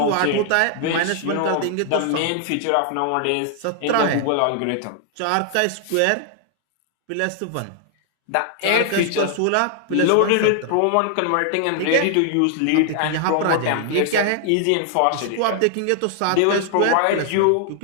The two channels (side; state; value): both; different; correlation 0.00